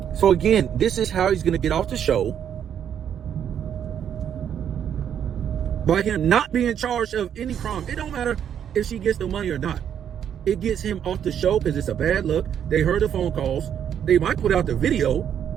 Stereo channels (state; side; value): quieter; left; 9.0 dB